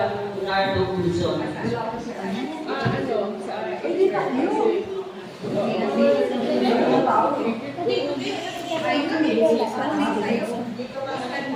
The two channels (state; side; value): identical; both; correlation 1.00